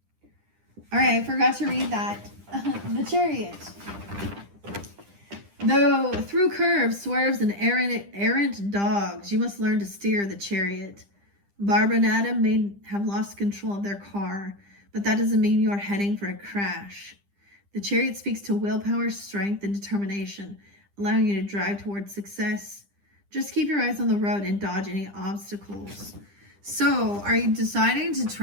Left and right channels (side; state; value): left; late; 10 ms